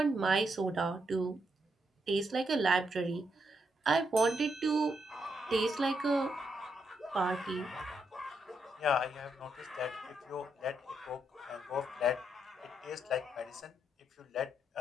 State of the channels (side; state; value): both; normal; correlation 0.79